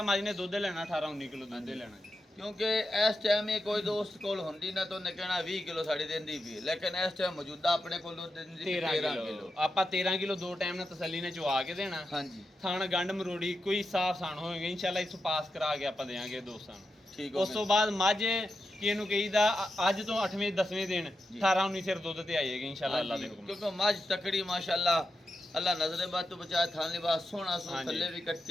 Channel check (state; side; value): normal; both; correlation 0.88